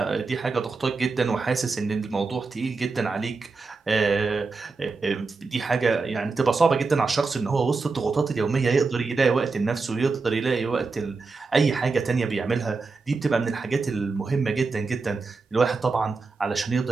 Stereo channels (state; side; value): quieter; left; 4.2 dB